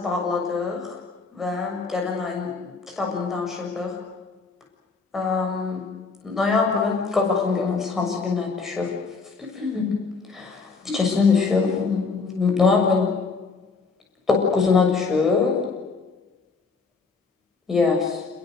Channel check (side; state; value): right; quieter; 4.5 dB